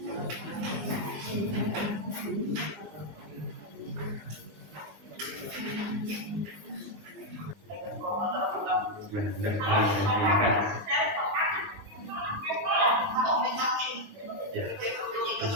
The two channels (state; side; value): late; left; 19 ms